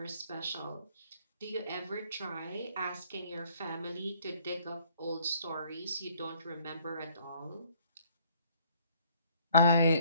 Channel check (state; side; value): inverted; both; correlation -0.61